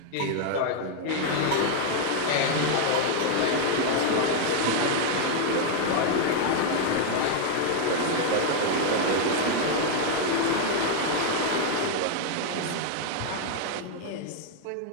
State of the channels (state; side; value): different; both; correlation 0.00